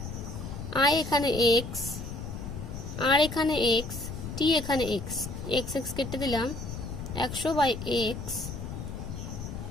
i এখানে x, r এখানে x, t এখানে x, x x কেটে দিলাম, 100 বাই x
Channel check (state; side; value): noise; left; rumble, 8 dB below the sound